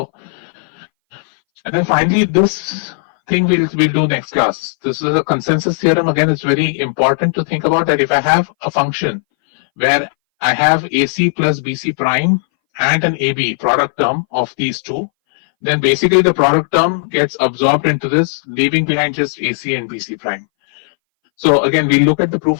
and then finally, this thing we'll do next class. This is a consensus theorem. Again, it's very important to think about that if I have a function where I have AC plus BC prime and an AB product term of these two, then basically the product term gets absorbed into this, leaving behind just AC and BC prime. So again, we'll look at the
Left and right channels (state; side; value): silent; right; 63 dB below the other